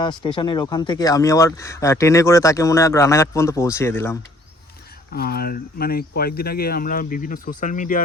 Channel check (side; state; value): both; normal; correlation 0.59